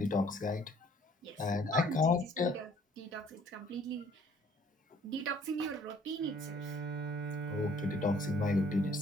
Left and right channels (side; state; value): both; normal; correlation 0.58